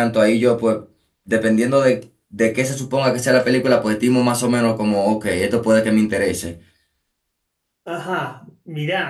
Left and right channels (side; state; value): both; identical; correlation 1.00